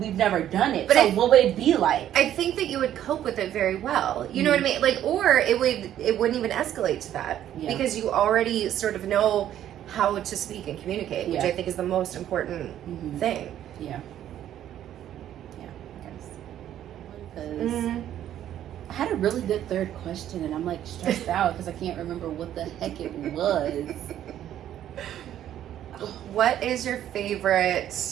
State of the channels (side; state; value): left; quieter; 11.3 dB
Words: done it. But so what would it be like? I think that you would cope with it very well. You know what I mean? Like, or it wouldn't even escalate to that because you already sort of know how to speak and communicate, which I think is the most important thing. Yeah. Yeah, I guess. Because I had a really good third question, and I'm like stressed out because I can't remember what the heck it was. What is your favorite